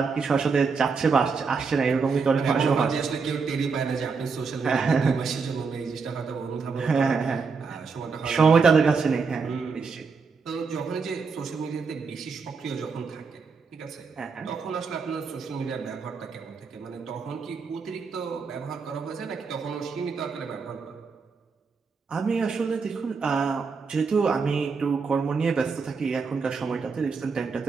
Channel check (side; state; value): left; quieter; 5.0 dB